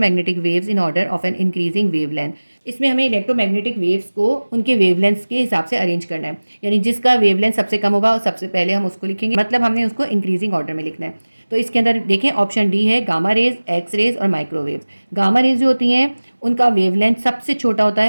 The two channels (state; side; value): inverted; both; correlation -1.00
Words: waves in order of an increasing wavelength. इसमें हमें इलेक्ट्रोमैग्नेटिक वेव्स को उनके वेवलेंथ्स के हिसाब से अरेंज करना है, यानी जिसका वेवलेंथ सबसे कम होगा सबसे पहले हम उसको लिखेंगे, मतलब हमने उसको इंक्रीजिंग ऑर्डर में लिखना है। तो इसके अंदर देखें ऑप्शन डी है, गामा रेज, एक्स रेज और माइक्रोवेव्स। गामा रेज जो होती हैं उनका वेवलेंथ सबसे छोटा होता